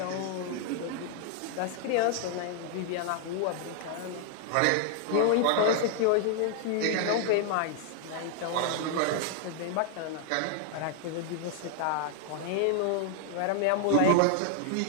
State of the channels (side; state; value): both; different; correlation 0.00